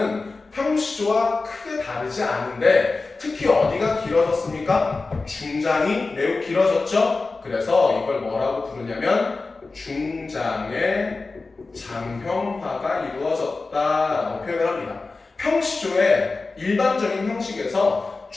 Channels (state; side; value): quieter; right; 3.8 dB